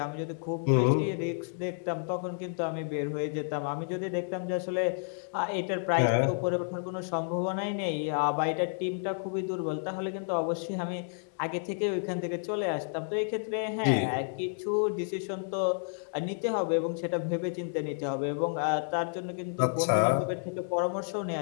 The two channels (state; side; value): silent; right; digital silence